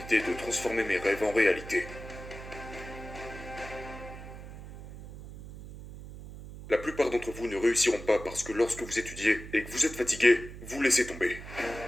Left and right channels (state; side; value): noise; right; hum, 13 dB below the sound